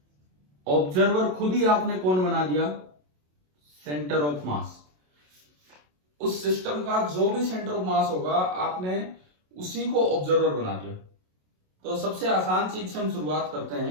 ऑब्जर्वर खुद ही आपने कौन बना दिया? सेंटर ऑफ मास। उस सिस्टम का जो भी सेंटर ऑफ मास होगा आपने उसी को ऑब्जर्वर बना दिया। तो सबसे आसान चीज से हम शुरुआत करते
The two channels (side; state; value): left; late; 27 ms